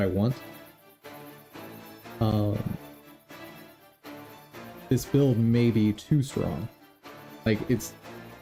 want, this build may be too strong. Like,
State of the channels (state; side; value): identical; both; correlation 1.00